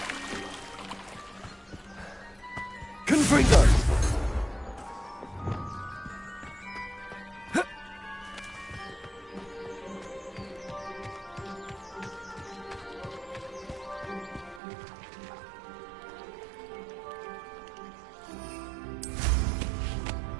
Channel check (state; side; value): drops out; left; at 14.6 s